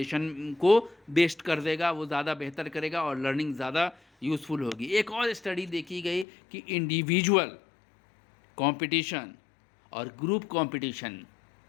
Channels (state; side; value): drops out; right; at 6.2 s